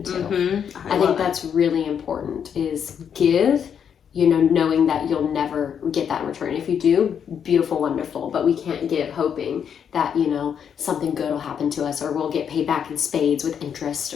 to. Mm-hmm. I think that's really important, is give, knowing that you'll never get that in return. If you do, beautiful, wonderful, but we can't give hoping that, something good will happen to us or we'll get paid back in spades with interest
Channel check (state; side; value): quieter; right; 7.9 dB